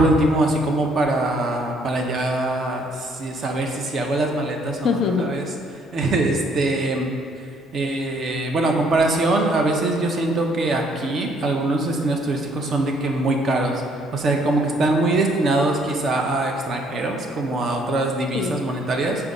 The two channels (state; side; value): normal; both; correlation 0.65